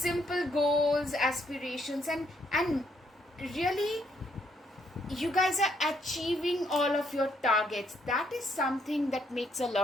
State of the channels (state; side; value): normal; both; correlation 0.72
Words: goals, aspirations, and really you guys are achieving all of your targets. That is something that makes a